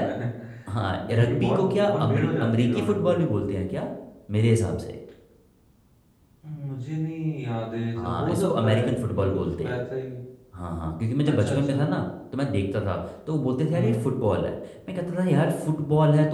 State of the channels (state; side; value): identical; both; correlation 1.00